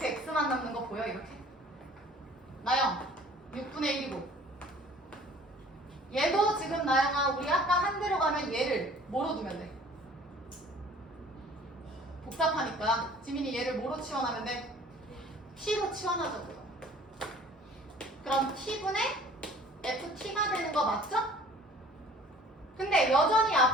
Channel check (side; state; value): both; normal; correlation 0.51